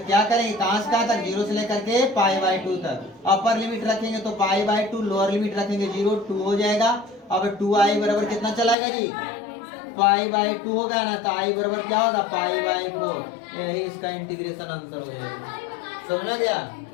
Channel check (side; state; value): right; drops out; at 8.8 s